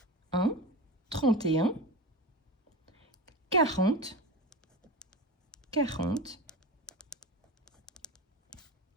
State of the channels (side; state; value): both; normal; correlation 0.26